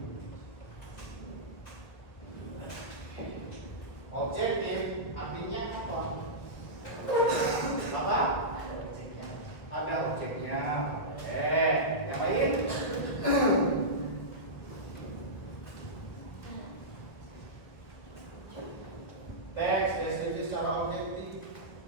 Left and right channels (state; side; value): late; right; 1.8 ms